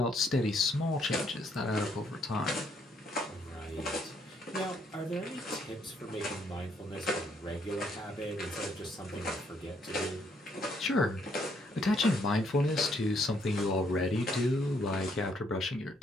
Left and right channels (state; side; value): normal; both; correlation 0.70